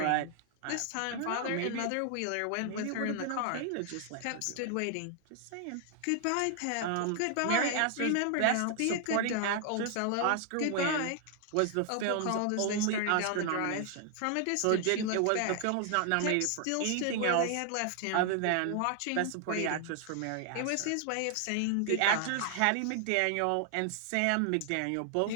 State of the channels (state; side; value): different; both; correlation 0.00